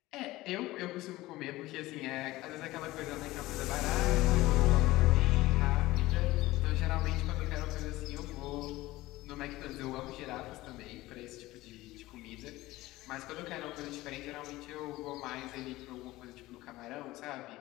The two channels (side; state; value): right; quieter; 18.1 dB